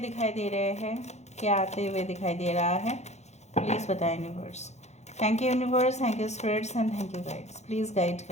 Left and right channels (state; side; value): late; right; 0.33 ms